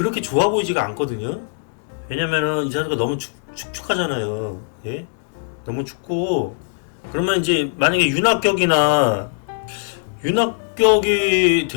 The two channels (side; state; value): right; silent; digital silence